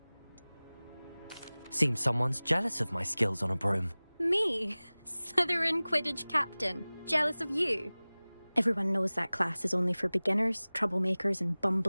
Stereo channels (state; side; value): inverted; both; correlation -0.99